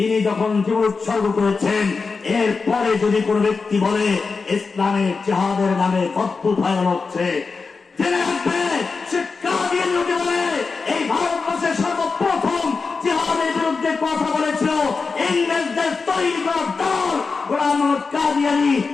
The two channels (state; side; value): quieter; right; 4.6 dB